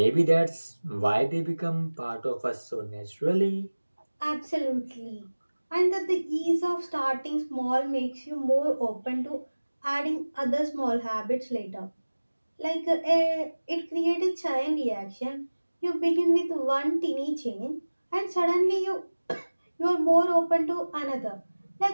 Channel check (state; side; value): inverted; both; correlation -1.00